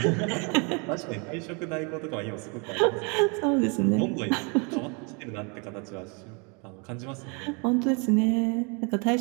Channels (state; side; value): quieter; left; 33.3 dB